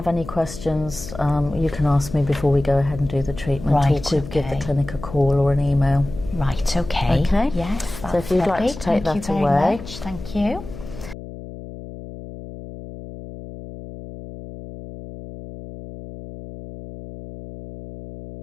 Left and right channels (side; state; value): left; noise; hum, 13 dB below the sound